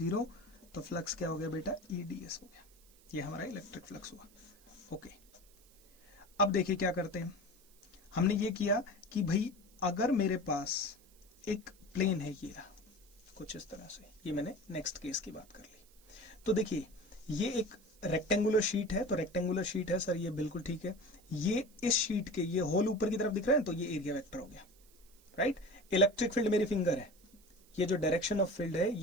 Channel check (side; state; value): right; noise; hiss, 28 dB below the sound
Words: तो फ्लक्स क्या हो गया बेटा? ई ds हो गया। ये हमारा इलेक्ट्रिक फ्लक्स हुआ। ओके, अब देखिए क्या करते हैं। हमने ये किया कि भाई अगर मेरे पास एक प्लेन है, ये रहा कुछ इस तरह से, ये मैंने नेक्स्ट केस की बात कर ली। तो देखिए, ये एक रेक्टेंगुलर शीट है, तो रेक्टेंगुलर शीट है सर, ये बिल्कुल ठीक है। ये इस शीट के ये होल ऊपर की तरफ दिख रहा है, तो ये एरिया वेक्टर हो गया, राइट। इलेक्ट्रिक फील्ड मेरी फिंगर है, ये जो डायरेक्शन ऑफ फील्ड है